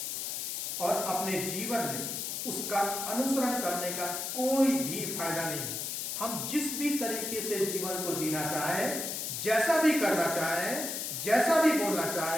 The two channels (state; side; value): noise; left; hiss, 3 dB below the sound